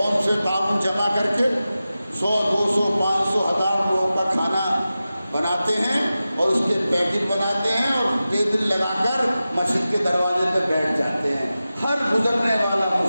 سے تعاون جمع کر کے 100 200 500 1000 لوگوں کا کھانا بناتے ہیں اور اس کے پیکٹ بناتے ہیں اور ٹیبل لگا کر مسجد کے دروازے پہ بیٹھ جاتے ہیں. ہر گزرنے والا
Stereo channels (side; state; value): both; inverted; correlation -0.94